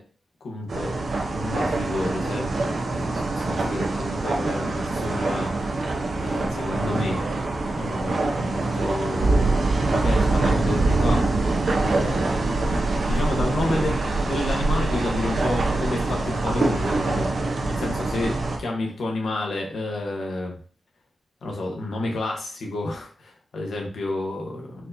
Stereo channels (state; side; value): normal; both; correlation 0.90